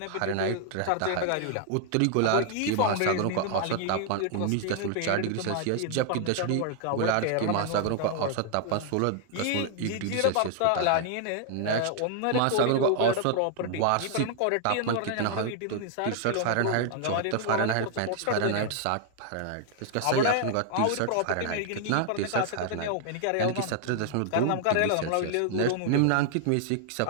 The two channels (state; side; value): different; both; correlation 0.00